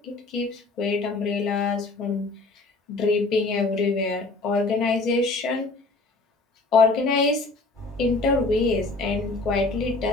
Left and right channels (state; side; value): quieter; right; 3.5 dB